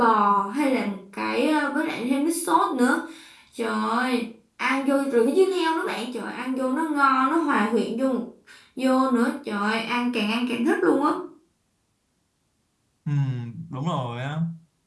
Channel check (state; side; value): identical; both; correlation 1.00